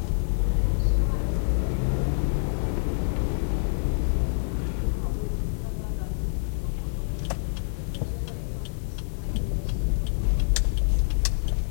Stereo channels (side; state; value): right; silent; digital silence